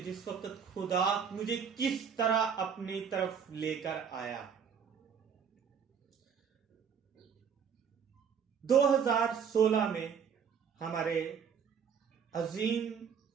जिस वक्त खुदा मुझे किस तरह अपनी तरफ लेकर आया। 2016 में हमारे अजीम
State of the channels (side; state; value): left; quieter; 7.0 dB